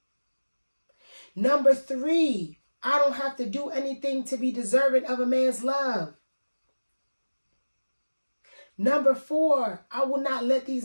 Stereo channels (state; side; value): inverted; both; correlation -1.00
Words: Number 3, I don't have to do anything to be deserving of a man's love. Number 4, I will not let